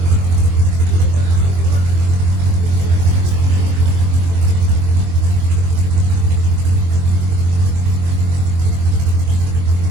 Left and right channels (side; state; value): left; late; 23 ms